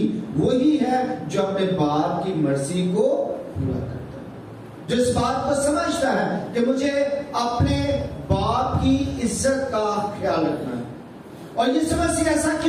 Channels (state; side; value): identical; both; correlation 1.00